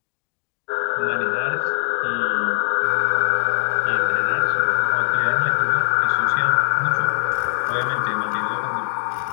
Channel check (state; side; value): silent; right; 64 dB below the other